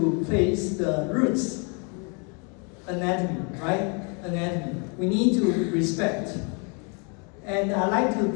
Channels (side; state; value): right; quieter; 34.9 dB